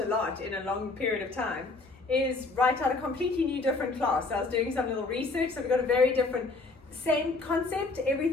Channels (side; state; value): right; quieter; 3.5 dB